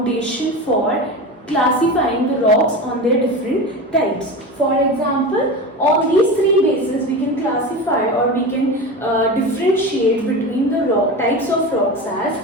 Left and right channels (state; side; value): normal; both; correlation 0.26